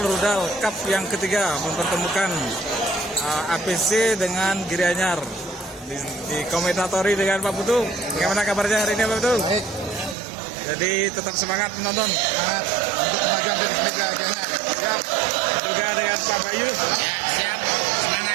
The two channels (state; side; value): drops out; left; at 10.2 s